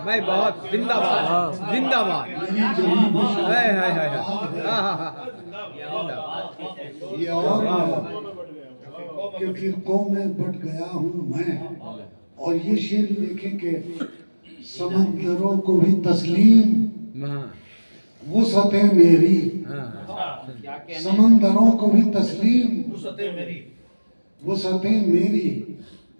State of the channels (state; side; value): inverted; both; correlation -1.00